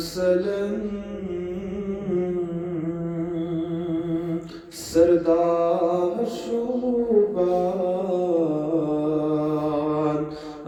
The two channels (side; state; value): both; identical; correlation 1.00